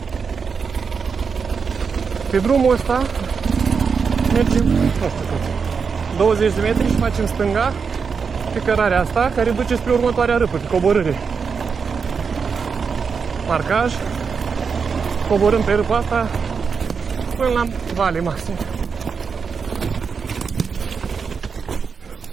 Pe drumul ăsta mergem, nu știu cât, 20 de metri și facem stânga pe cărarea asta, care duce spre următoarea râpă, pe coborâre. Marcaj, coborâm pe râpa asta până la vale maxim.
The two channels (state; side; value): quieter; left; 5.7 dB